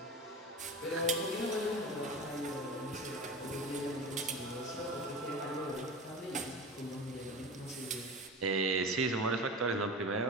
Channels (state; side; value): normal; both; correlation 0.30